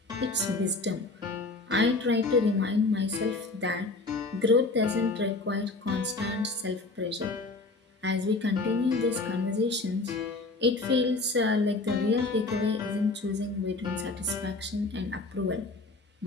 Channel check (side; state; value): right; quieter; 3.3 dB